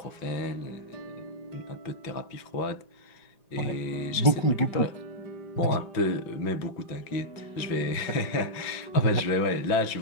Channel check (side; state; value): right; late; 5.9 ms